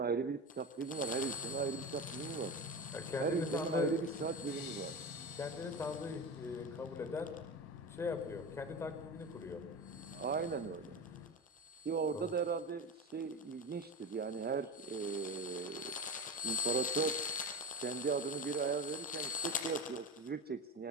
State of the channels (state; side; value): normal; both; correlation 0.25